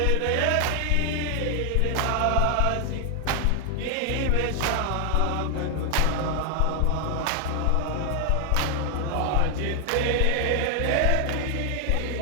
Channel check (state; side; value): different; both; correlation 0.00